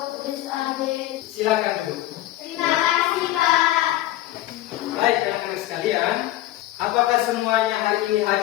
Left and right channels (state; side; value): quieter; right; 15.3 dB